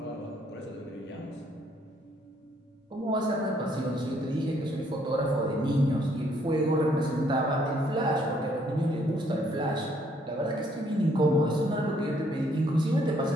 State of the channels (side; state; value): both; normal; correlation 0.67